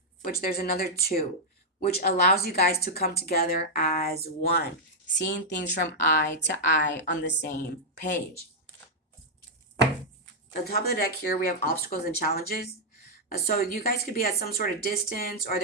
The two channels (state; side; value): normal; both; correlation -0.05